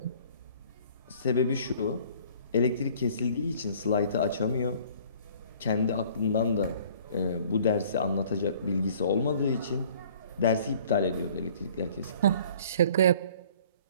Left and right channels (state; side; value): inverted; both; correlation -0.53